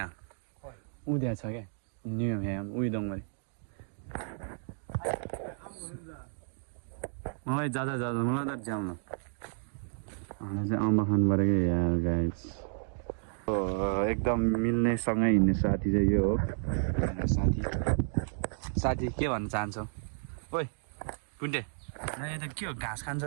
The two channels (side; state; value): left; silent; digital silence